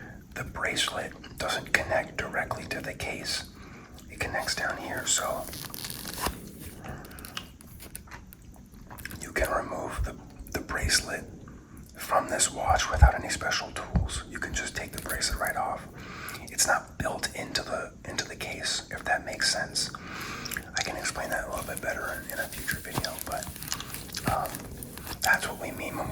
The bracelet doesn't connect directly to the case. It connects down here, so you can remove the bracelet from this watch without any special tools. You can just take the bracelet right off. It's not built into the case, if that makes sense. I can explain that a little bit better in a future video, but that's what we mean when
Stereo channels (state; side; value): identical; both; correlation 1.00